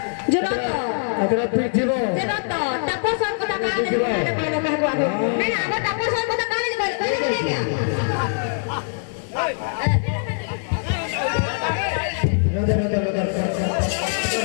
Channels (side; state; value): right; silent; digital silence